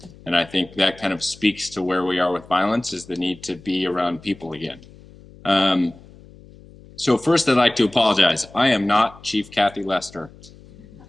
And I think that kind of speaks to where we are with violence, is the need to be around people again. So first, I'd like to apologize. I am not Chief Kathy Lester.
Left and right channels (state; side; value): noise; left; hum, 22 dB below the sound